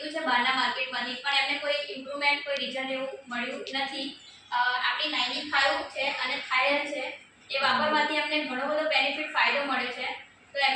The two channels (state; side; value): identical; both; correlation 1.00